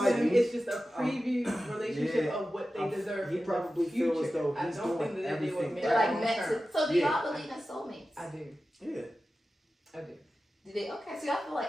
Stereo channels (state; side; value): normal; both; correlation 0.94